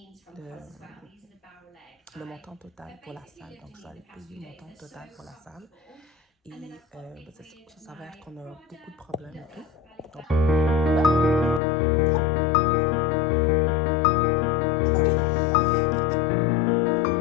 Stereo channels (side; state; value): right; drops out; at 11.6 s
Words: le montant total pour la salle. Donc, je dois aller payer le montant total pour la salle. Et ça s'avère qu'on a beaucoup de problèmes et tout. Donc,